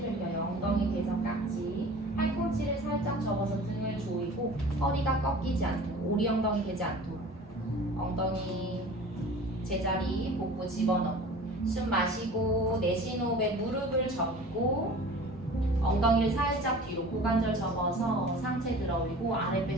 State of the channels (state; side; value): normal; both; correlation 0.42